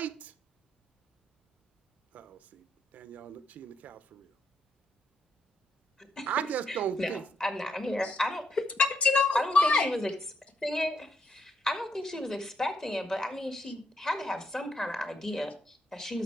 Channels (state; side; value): normal; both; correlation 0.77